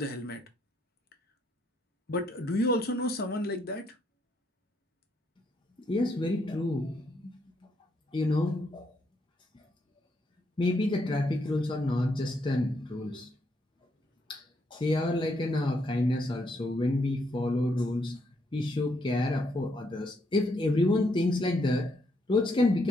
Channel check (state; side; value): normal; both; correlation 0.75